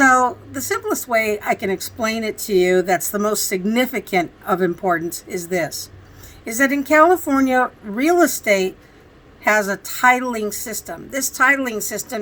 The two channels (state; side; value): identical; both; correlation 1.00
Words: the simplest way I can explain it to you that's the most significant of importance is this, is that in California, real estate has a titling system. This titling